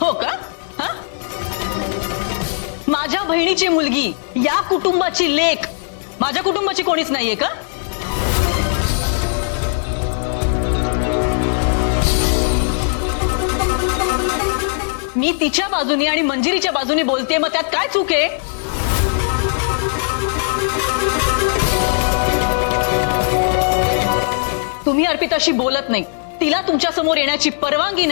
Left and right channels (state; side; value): silent; right; digital silence